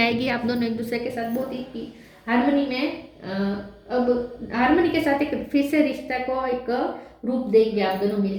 आप दोनों एक दूसरे के साथ बहुत ही हार्मनी में अब हार्मनी के साथ एक फिर से रिश्ता को एक रूप देंगे आप दोनों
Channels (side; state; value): both; identical; correlation 1.00